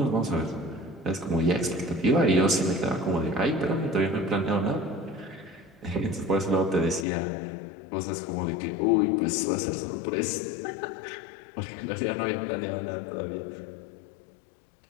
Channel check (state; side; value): drops out; right; at 7.1 s